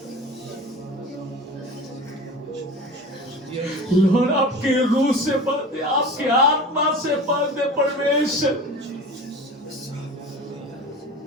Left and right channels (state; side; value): normal; both; correlation 0.35